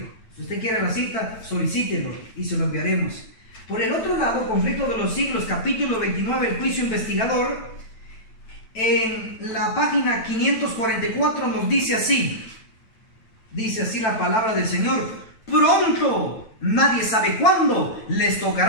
Si usted quiere la cita, solicítelo y se lo enviaremos. Por el otro lado, conflicto de los siglos, capítulo 29, el juicio investigador. En la página 544 nos dice así. Dice así la palabra del Señor: pronto, nadie sabe cuándo, les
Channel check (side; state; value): right; late; 9.1 ms